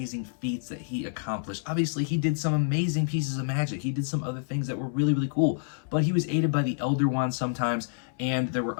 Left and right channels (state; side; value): silent; right; 59 dB below the other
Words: feats that he accomplished. Obviously, he did some amazing pieces of magic. He did some other things that were really, really cool, but he was aided by the Elder Wand sometimes, and there were